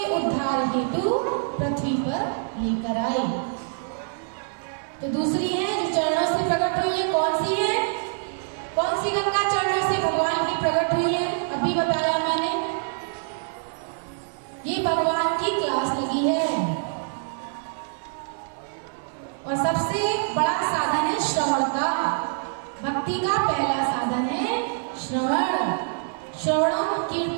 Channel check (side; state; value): left; silent; digital silence